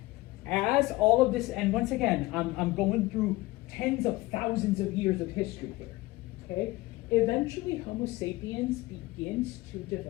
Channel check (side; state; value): right; quieter; 19.7 dB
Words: as all of this, and once again, I'm going through tens of thousands of years of history here, okay? Eventually, Homo sapiens begins to